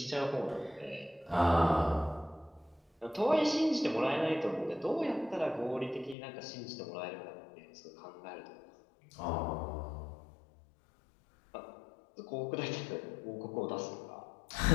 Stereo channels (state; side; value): drops out; right; at 6.2 s